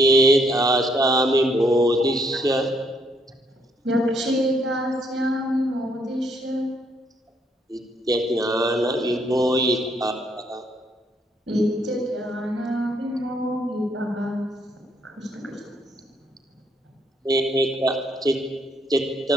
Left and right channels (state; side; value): normal; both; correlation 0.71